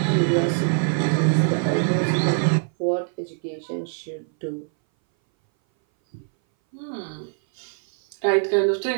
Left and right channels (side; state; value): left; silent; 60 dB below the other